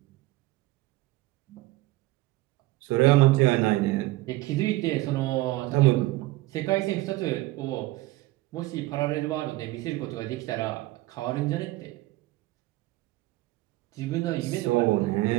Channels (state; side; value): quieter; left; 18.6 dB